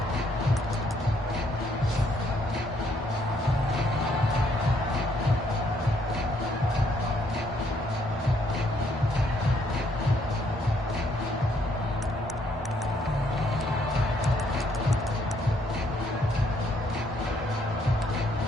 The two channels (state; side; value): normal; both; correlation 0.69